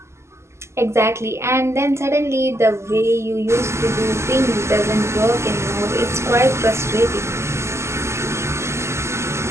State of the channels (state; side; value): late; left; 0.13 ms